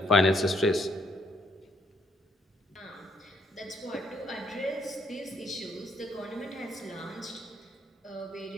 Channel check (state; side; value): normal; both; correlation 0.70